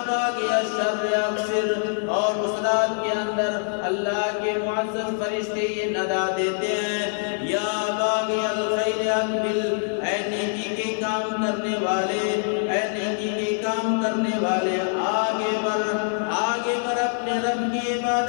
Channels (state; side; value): silent; right; 59 dB below the other